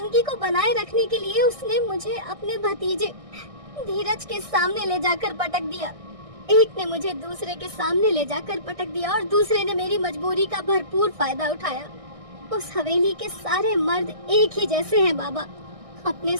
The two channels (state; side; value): late; left; 1.6 ms